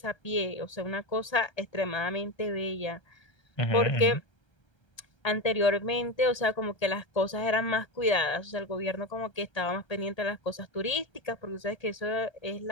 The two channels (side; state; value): right; late; 1.3 ms